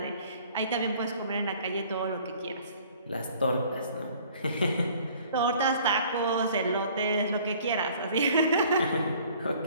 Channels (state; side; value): inverted; both; correlation -0.54